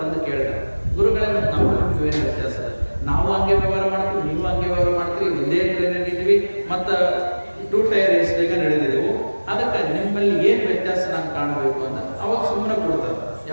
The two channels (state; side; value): inverted; both; correlation -1.00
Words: ಬಂದು ಕೇಳಿದ್ರು, ಗುರುಗಳೇ ಮತ್ತೆ ನಮಗೂ ಏನು ವ್ಯತ್ಯಾಸ ಅದ, ನಾವು ಹಂಗೆ ವ್ಯವಹಾರ ಮಾಡ್ತೀವಿ, ನೀವು ಹಂಗೆ ವ್ಯವಹಾರ ಮಾಡ್ತೀವಿ, ಒಂದೇ ಟ್ರೈನ್ ಇದ್ದೀವಿ, ಮತ್ತ 2 ಟೈರ್ AC ನಡೆದಿದ್ದೆವು, ಅದಕ್ಕೆ ನಿಮ್ಮಲ್ಲಿ ಏನ್ ವ್ಯತ್ಯಾಸ ನಾನು ಕಾಣಬೇಕು ಅಂತ ಅವಾಗ ಸುಮ್ಮನೆ ಕೊಡ್ತಾರೆ.